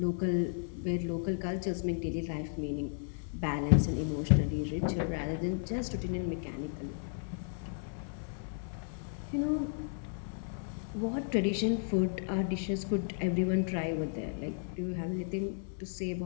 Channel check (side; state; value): right; silent; 55 dB below the other